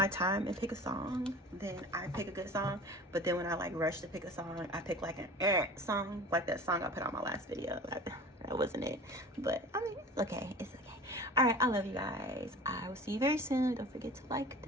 time and pick a song, then I pick a good song. But then when I like rush to pick a song, I pick like an song, like that song I put on my last video. That wasn't it. But I mean, it's okay. It's okay. All right, I love you guys. I will see you very soon. Don't forget to like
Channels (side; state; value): both; normal; correlation 0.39